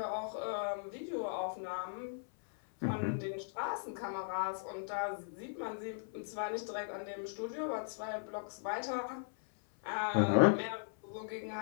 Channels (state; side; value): silent; right; 52 dB below the other